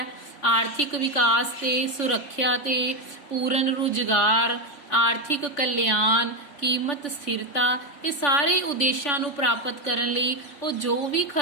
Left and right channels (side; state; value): right; late; 3.5 ms